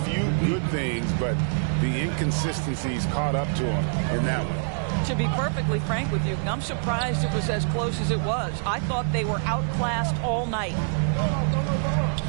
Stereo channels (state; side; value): silent; left; digital silence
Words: few good things, but the inconsistencies caught up to them in that one. To be perfectly frank with you, I'm surprised it was as close as it was. I thought they were outclassed all night.